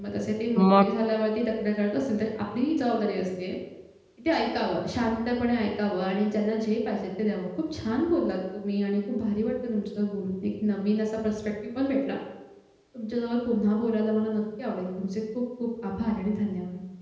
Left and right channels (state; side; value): identical; both; correlation 1.00